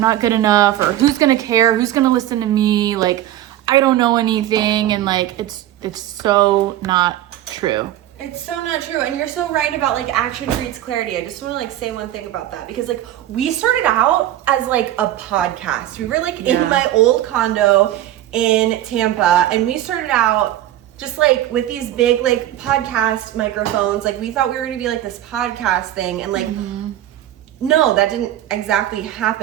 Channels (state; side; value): quieter; left; 13.1 dB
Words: not good enough, or who's going to care? Who's going to listen to me? Like, I don't know anything. And like, it's so not true. It's so not true. And you're so right about like action breeds clarity. I just want to like say one thing about that, because like we started out as like a podcast. We were like in my old condo in Tampa, and we started out just like with these big like podcast microphones. Like, we thought we were going to be like this podcast thing, and like, no, that didn't exactly